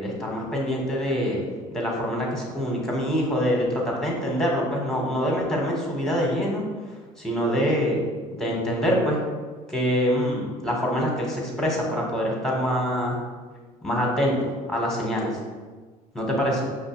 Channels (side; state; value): both; normal; correlation 0.53